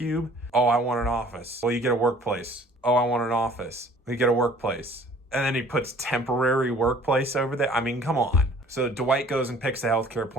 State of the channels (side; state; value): both; normal; correlation 0.53